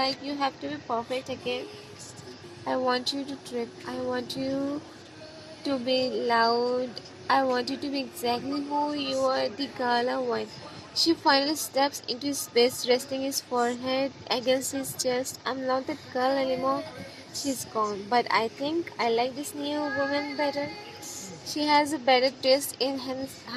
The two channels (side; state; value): both; identical; correlation 1.00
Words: you have to be perfect again. I want you to trip. I want you to be loud. I want you to be exactly who you are, the gala one. She finally steps into space, resting his forehead against his chest. I'm not that girl anymore. She's gone. But I think I like this new woman better. She has a better taste in